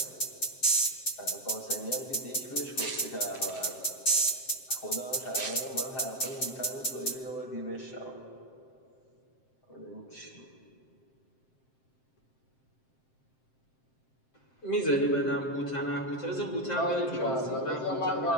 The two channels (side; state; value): right; late; 7.6 ms